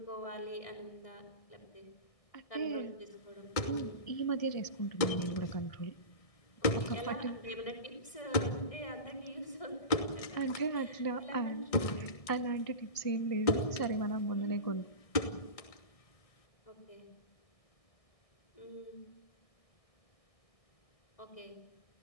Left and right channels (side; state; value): right; late; 1.6 ms